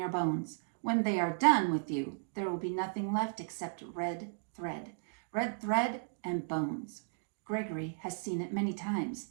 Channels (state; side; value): silent; left; digital silence